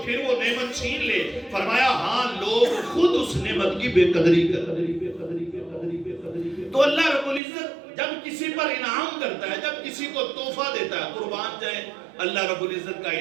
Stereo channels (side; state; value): left; drops out; at 7.4 s